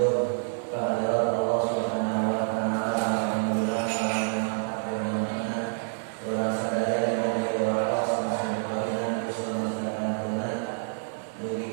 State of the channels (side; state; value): left; silent; digital silence